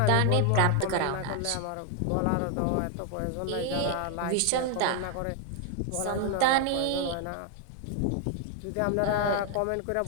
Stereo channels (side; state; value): both; different; correlation 0.00